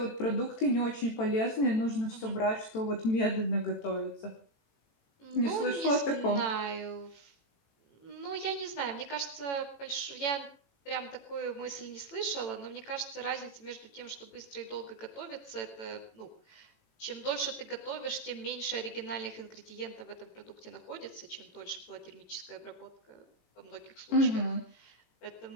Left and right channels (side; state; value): right; late; 18 ms